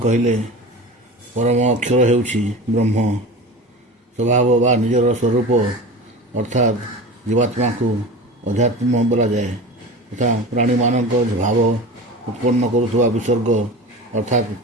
परम अक्षर हेउछि ब्रह्म। स्वभाव वा निजर स्वरूप अर्थात जीवात्मा को अध्यात्म बोला जाए तथा प्राणी मानक भाव उत्पन्न करुवा विसर्ग अर्थात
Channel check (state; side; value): normal; both; correlation 0.32